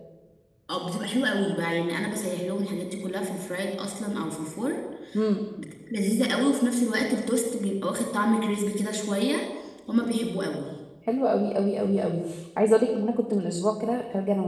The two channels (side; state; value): both; identical; correlation 1.00